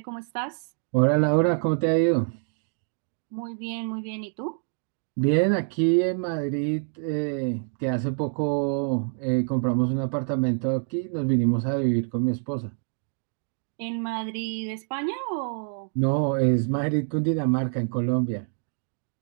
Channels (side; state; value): left; silent; 61 dB below the other